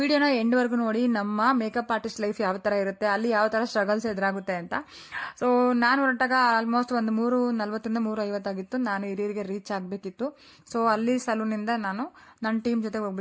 ಎಂಡ್ವರೆಗೂ ನೋಡಿ. ನಮ್ಮ ಮೇಕಪ್ ಆರ್ಟಿಸ್ಟ್ ಲೈಫ್ ಯಾವ ಥರ ಇರುತ್ತೆ, ಅಲ್ಲಿ ಯಾವ ಥರ ಸ್ಟ್ರಗಲ್ಸ್ ಎದುರಾಗುತ್ತೆ ಅಂತ. ಸೊ ನಾನು ಹೊರಟಾಗ ಆಲ್ಮೋಸ್ಟ್ ಒಂದು 3:40 3:50 ಆಗಿತ್ತು. ನಾನು ಹಿರಿಯರಿಗೆ ರೀಚ್ ಆಗಬೇಕಿತ್ತು. ಸೊ ಅಲ್ಲಿ ಸಲೂನಿಂದ ನಾನು ನನ್ನ ಟೀಮ್ ಜೊತೆಗೆ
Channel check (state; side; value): identical; both; correlation 1.00